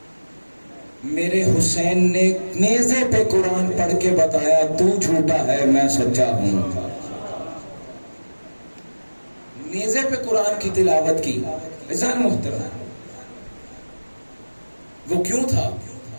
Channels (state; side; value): inverted; both; correlation -1.00